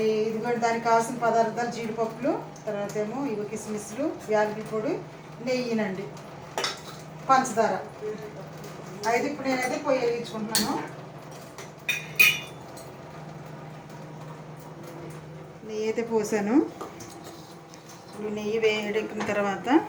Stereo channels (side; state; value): both; identical; correlation 1.00